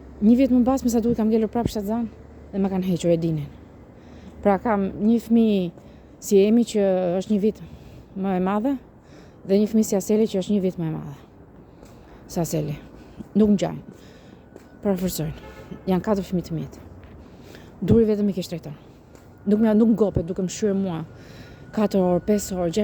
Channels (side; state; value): both; identical; correlation 1.00